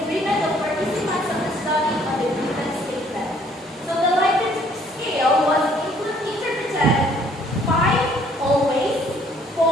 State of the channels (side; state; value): both; normal; correlation 0.61